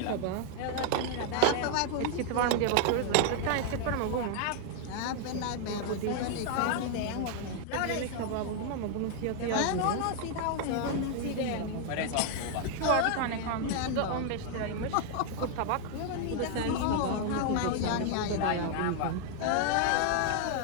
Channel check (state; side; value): different; both; correlation 0.00